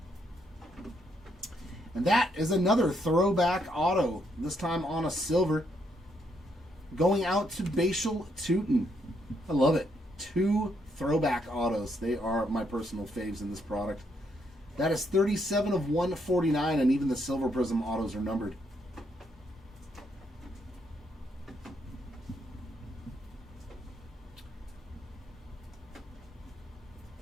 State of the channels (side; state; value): both; normal; correlation 0.75